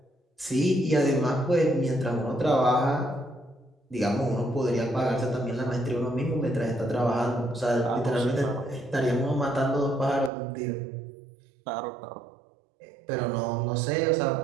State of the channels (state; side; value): drops out; left; at 10.3 s